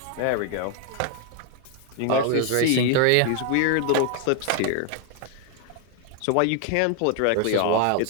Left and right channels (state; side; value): different; both; correlation 0.01